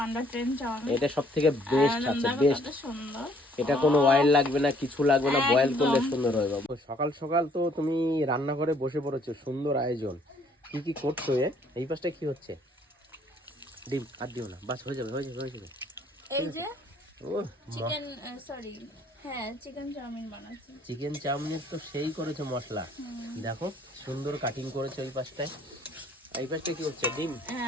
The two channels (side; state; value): both; normal; correlation 0.62